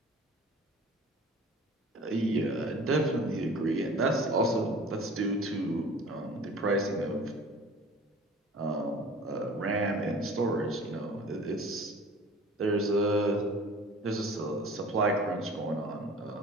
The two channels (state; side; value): normal; both; correlation 0.44